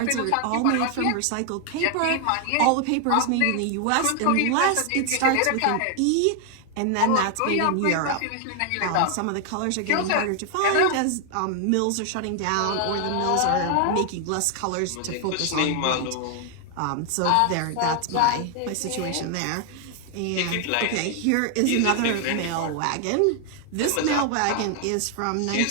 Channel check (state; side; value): different; both; correlation 0.00